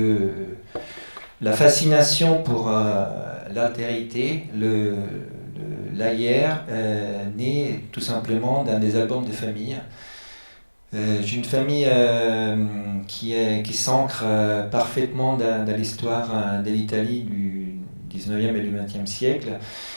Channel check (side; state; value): both; inverted; correlation -1.00